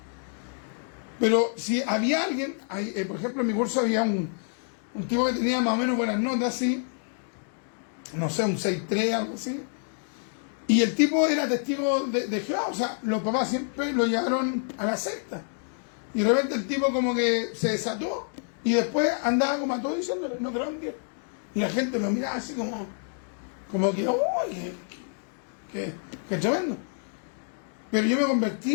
Pero si había alguien, por ejemplo, en mi curso había un tipo que tenía más o menos buenas notas, así, no sé, un 6.3, algo así. Y el tipo era testigo de Jehová, o sea, los papás siempre lo llevaron a la secta. Y de repente el tipo como que se desató y después andaba como a todos diciéndole, no creo en Dios. Y la gente lo miraba así como que, ¡uy! ¡Qué tremendo! Pero yo me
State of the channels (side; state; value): right; silent; 60 dB below the other